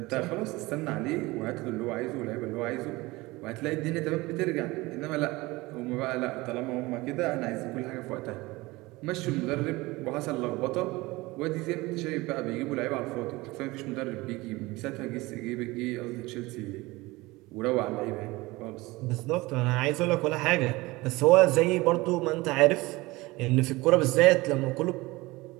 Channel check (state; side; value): quieter; left; 21.4 dB